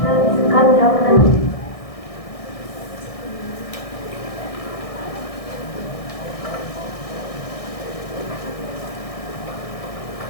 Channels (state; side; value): late; right; 1.6 ms